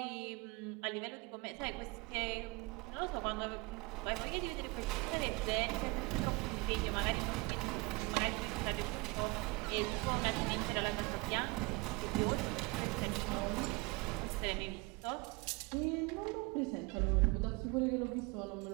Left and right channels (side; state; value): left; quieter; 26.0 dB